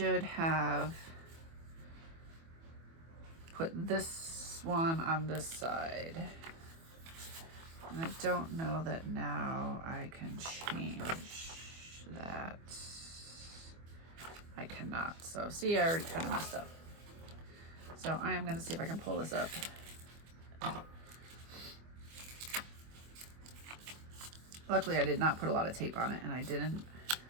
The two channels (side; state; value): left; late; 24 ms